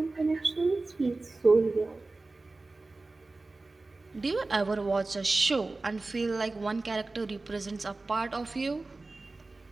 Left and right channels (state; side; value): quieter; left; 3.3 dB